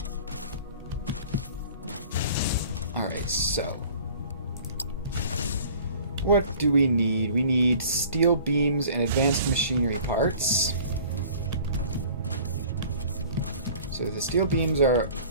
Alright, so what do we need? We need steel beams and advanced machinery parts. So the steel beams are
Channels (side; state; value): both; inverted; correlation -0.47